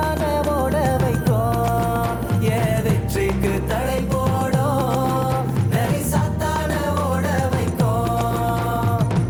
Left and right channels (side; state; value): both; identical; correlation 1.00